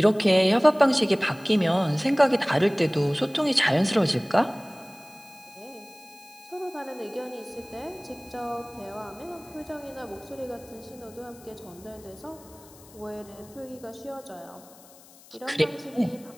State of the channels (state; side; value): noise; left; hiss, 23 dB below the sound